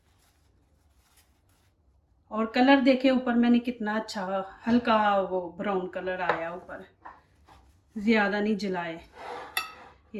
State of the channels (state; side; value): identical; both; correlation 1.00